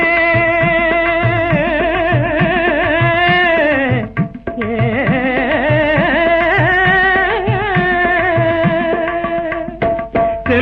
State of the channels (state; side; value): identical; both; correlation 1.00